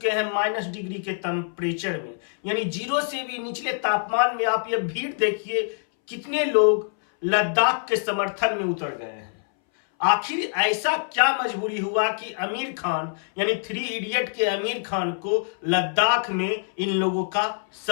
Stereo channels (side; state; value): right; silent; 62 dB below the other